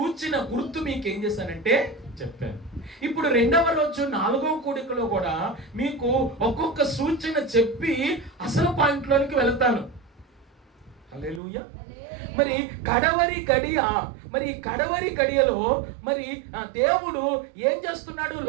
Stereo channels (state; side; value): drops out; left; at 11.4 s